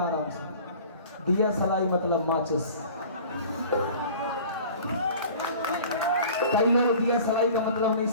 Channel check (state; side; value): inverted; both; correlation -0.44